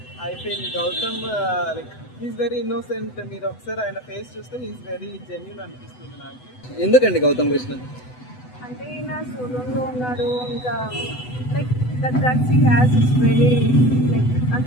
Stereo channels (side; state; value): right; late; 8.0 ms